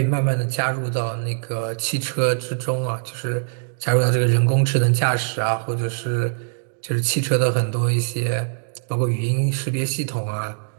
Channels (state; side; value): silent; left; digital silence